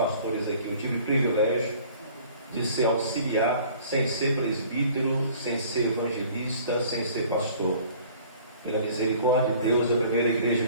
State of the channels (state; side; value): inverted; both; correlation -0.51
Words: aqui. Eu tive o privilégio de ser auxiliar, sem ser presbítero, sem ser evangelista, sem ser pastor. Pela misericórdia de Deus, a primeira igreja